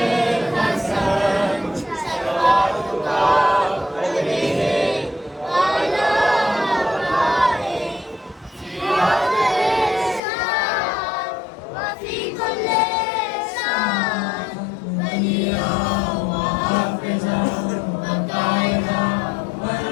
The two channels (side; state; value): right; drops out; at 10.2 s